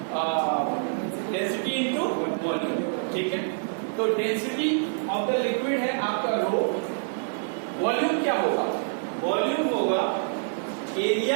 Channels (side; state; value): left; silent; digital silence